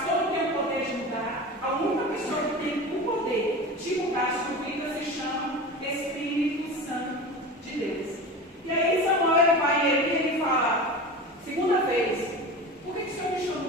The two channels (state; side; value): normal; both; correlation 0.31